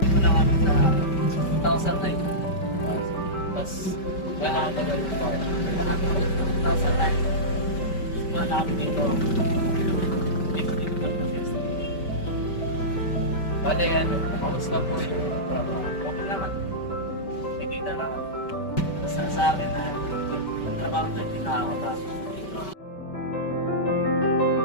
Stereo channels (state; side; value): late; right; 5.2 ms